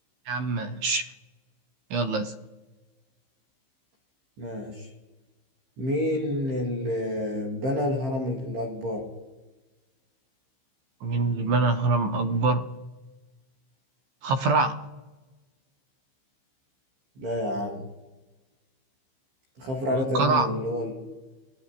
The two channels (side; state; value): left; late; 15 ms